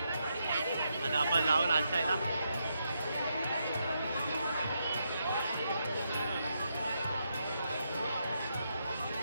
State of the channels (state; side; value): inverted; both; correlation -0.81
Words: आता आपण लावून नाचायला.